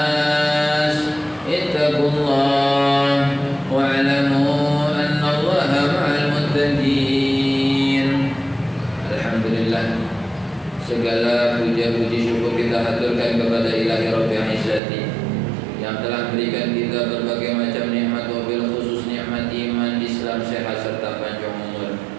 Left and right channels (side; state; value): left; drops out; at 14.8 s